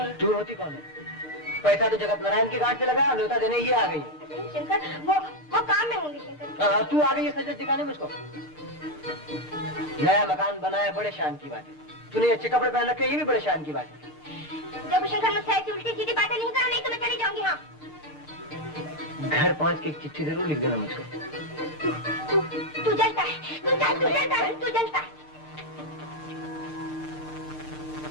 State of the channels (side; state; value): right; late; 6.5 ms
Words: तू होती कौन है? पैसा तो जगत नारायण के घाट से लगा, न्योता देने ये आ गई है। शंकर, वो काम में होंगी शंकर। तू आ गई है सजत दिखाने मुझको। नया मकान बना है, बड़े शान की बात है। तूने अच्छे कपड़े पहन रखे, ये भी बड़े शान की बात है। जब शंकर मुझसे ऐसी उल्टी सीधी बातें नहीं करो, नहीं तो मैं चली जाऊंगी। हाँ, घर पहुंच के एक चिट्ठी जरूर लिख देना मुझको। तू जलता है, तू जलता है, तू जलता है।